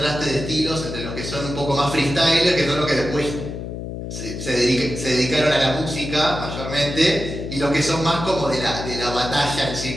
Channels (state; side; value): noise; left; hum, 7 dB below the sound